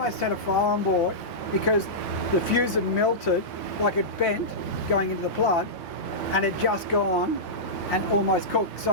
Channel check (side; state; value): both; normal; correlation -0.14